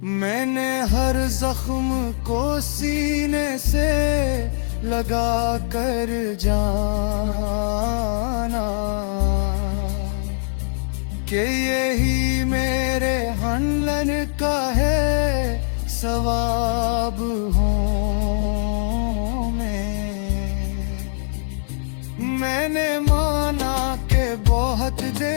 मैंने हर जख्म को सीने से लगा कर जाना कि यही मेरे हनलन का है सवाब हूँ मैंने माना कि बहुत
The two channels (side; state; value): right; silent; digital silence